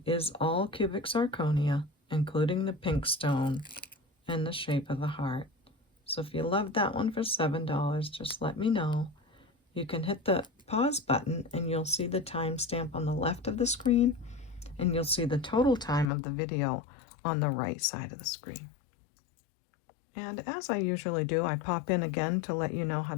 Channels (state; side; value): drops out; right; at 16.1 s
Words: is all cubic zirconia, including the pink stone and the shape of the heart. So if you love that one for $7, just let me know. You can hit the pause button and you'll see the timestamp on the left of the screen, and you'll see the total time of the video on the right side of the screen. And as I usually do, I pop in again to let you know how